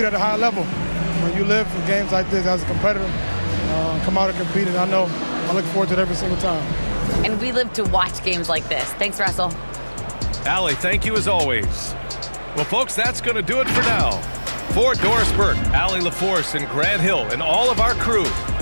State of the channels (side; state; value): both; inverted; correlation -1.00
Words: at a high level. When you live for games like this as a competitor, come out and compete, and I look forward to it every single time. And we live to watch games like this. Thanks, Russell. Allie, thank you as always. Well, folks, that's going to do it for now. For Doris Burke, Allie LaForce, and Grant Hill, and all of our crew,